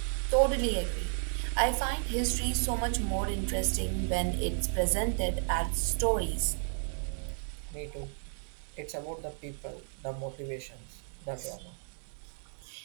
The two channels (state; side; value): silent; left; 56 dB below the other